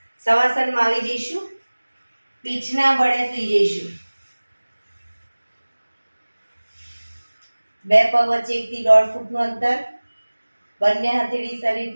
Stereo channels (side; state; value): both; inverted; correlation -1.00